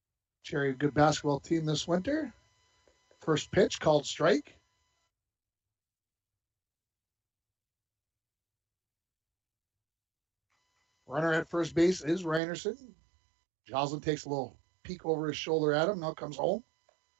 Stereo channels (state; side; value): drops out; left; at 12.4 s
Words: Cherry, a good basketball team this winter. First pitch called strike. Runner at first base is Reinerson. Joslin takes a little peek over his shoulder at him. Now comes home.